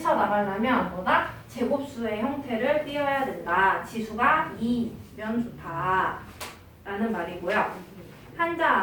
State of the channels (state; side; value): identical; both; correlation 1.00